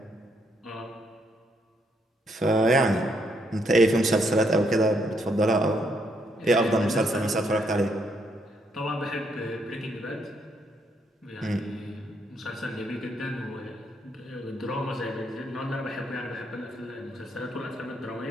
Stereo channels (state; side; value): normal; both; correlation 0.74